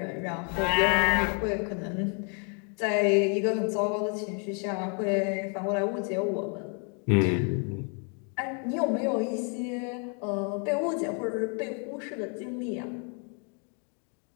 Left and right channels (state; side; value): quieter; right; 39.7 dB